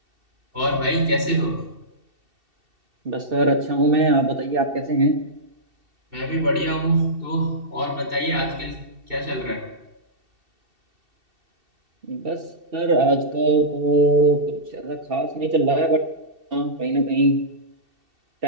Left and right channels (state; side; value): late; left; 2.7 ms